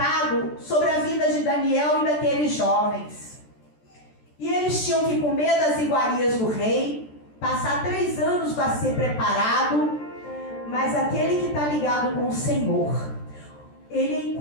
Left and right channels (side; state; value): right; late; 13 ms